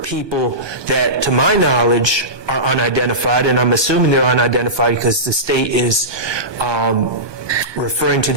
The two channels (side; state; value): left; late; 1.2 ms